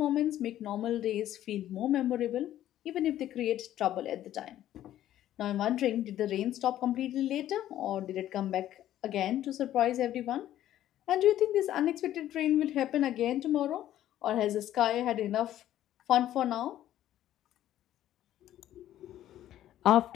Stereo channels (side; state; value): right; quieter; 12.5 dB